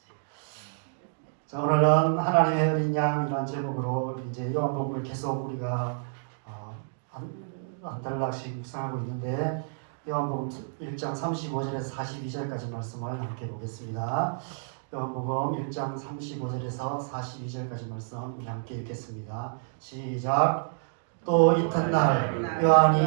자, 오늘은 하나님의 어린 양이라는 제목으로 이제 요한복음을 계속 우리가 한 달락씩 묵상하고 있는데, 요한복음 1장 35절에서 42절까지 말씀을 함께 보겠습니다. 요한복음 1장 35절에서 42절까지 말씀 우리 함께 읽겠습니다. 시작. 또 이튿날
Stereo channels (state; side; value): silent; left; digital silence